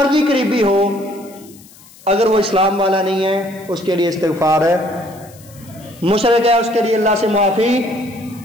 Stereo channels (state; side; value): noise; left; hiss, 24 dB below the sound